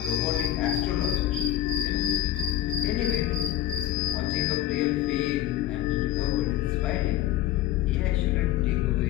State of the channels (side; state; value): right; quieter; 13.2 dB